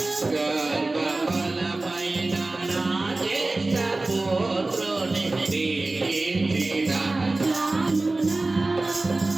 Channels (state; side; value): quieter; left; 3.1 dB